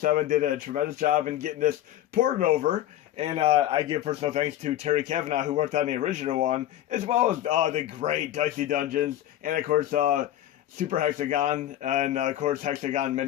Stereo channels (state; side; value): quieter; right; 12.9 dB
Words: did a tremendous job in getting this ported over. And I give personal thanks to Terry Cavanagh, who worked on the original one, as well as the great Dicey Dungeons, and of course Super Hexagon, and of course Hexagon